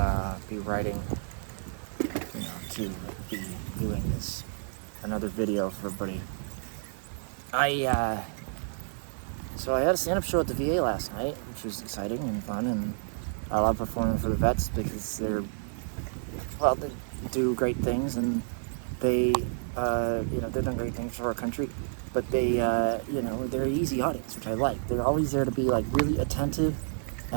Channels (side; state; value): left; silent; 56 dB below the other